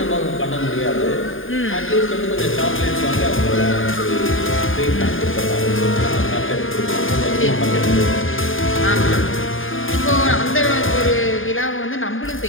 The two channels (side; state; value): right; late; 0.59 ms